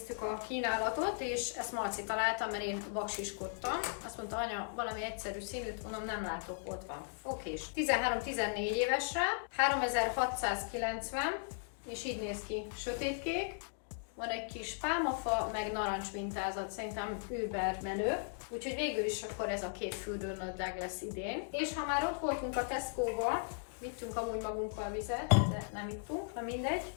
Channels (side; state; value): right; silent; digital silence